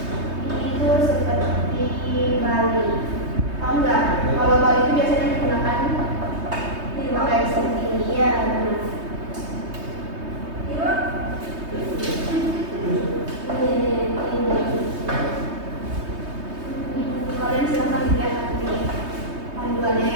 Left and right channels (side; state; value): left; late; 3.2 ms